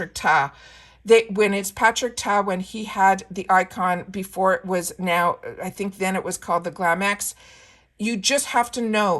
Ta, when it's Patrick Ta, when he had the icon before it was now, I think then it was called the Glam X, you just have to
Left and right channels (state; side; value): identical; both; correlation 1.00